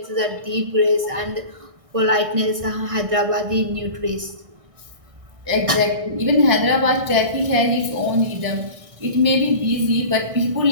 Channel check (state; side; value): late; left; 1.6 ms